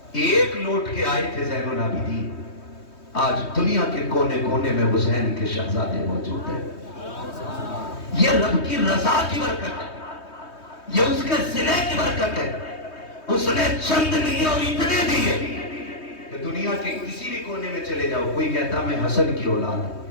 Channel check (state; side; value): late; right; 3.2 ms